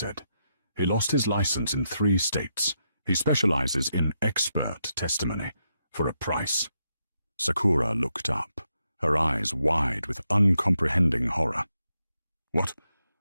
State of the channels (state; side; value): inverted; both; correlation -0.82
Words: "He lost his license in 3 states. He specializes in expert testimony for a price." Sakura looked up, her eyes wide with uncomprehending horror. What